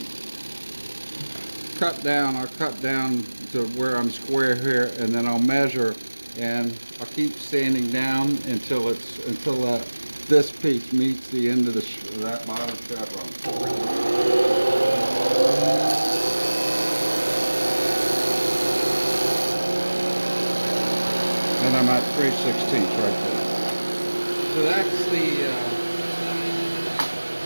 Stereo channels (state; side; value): inverted; both; correlation -1.00